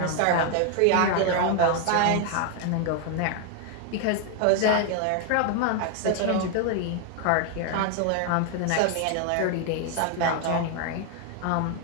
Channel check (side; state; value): both; different; correlation 0.01